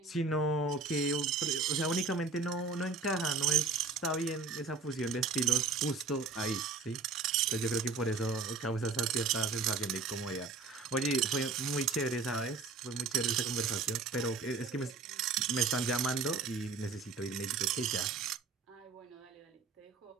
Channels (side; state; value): left; quieter; 4.1 dB